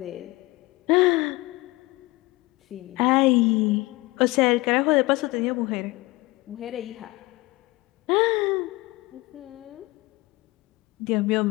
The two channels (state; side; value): quieter; right; 21.8 dB